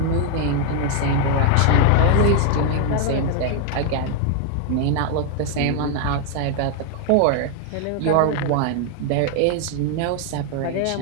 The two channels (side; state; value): both; different; correlation 0.00